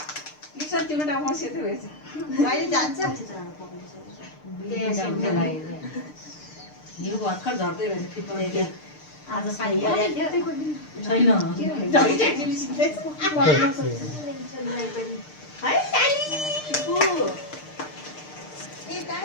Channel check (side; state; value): right; late; 6.6 ms